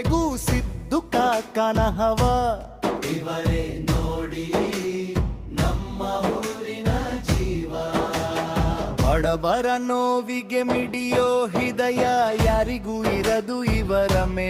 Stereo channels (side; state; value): both; identical; correlation 1.00